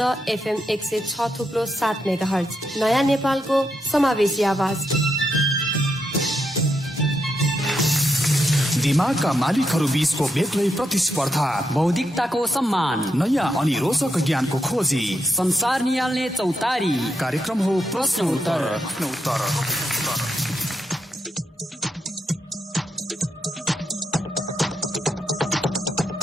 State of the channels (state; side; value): normal; both; correlation 0.81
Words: FM 106.7 मेगाहर्ज, नयाँ नेपालको समावेशी आवाज। दिमागका मालिकहरू बीचको बेग्लै प्रतिस्पर्धा, बौद्धिकताको सम्मान, नयाँ अनि रोचक ज्ञानको खोजी, संसार निहाल्ने चौतारी। कार्यक्रम हो प्रश्न उत्तर।